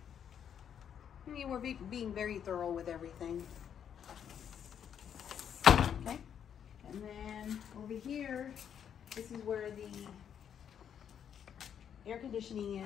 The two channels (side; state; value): right; quieter; 8.6 dB